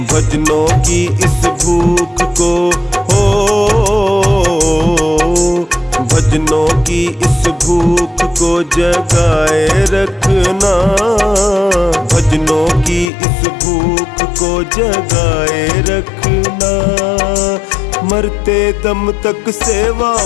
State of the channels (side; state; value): right; drops out; at 13.1 s